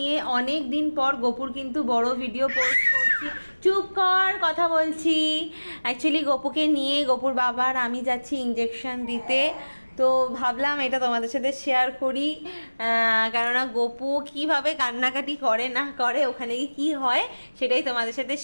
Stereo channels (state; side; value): inverted; both; correlation -1.00